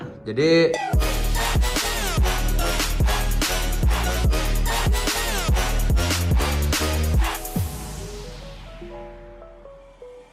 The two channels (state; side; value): identical; both; correlation 1.00